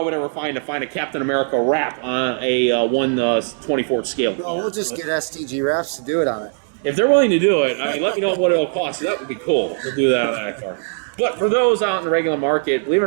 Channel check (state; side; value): silent; left; 59 dB below the other